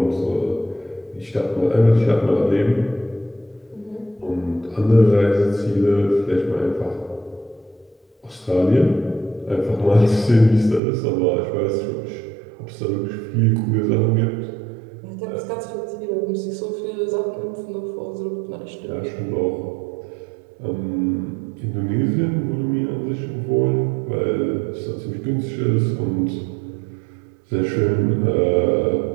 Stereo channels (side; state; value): left; drops out; at 10.8 s